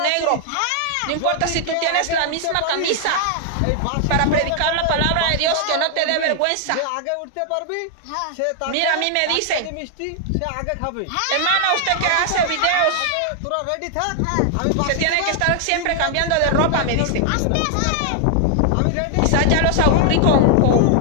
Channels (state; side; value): different; both; correlation 0.00